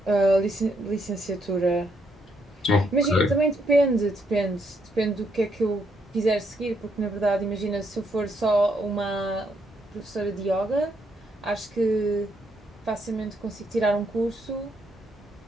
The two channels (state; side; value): normal; both; correlation 0.75